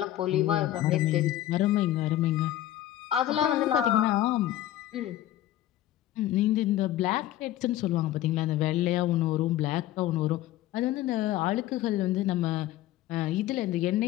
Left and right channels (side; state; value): right; quieter; 13.8 dB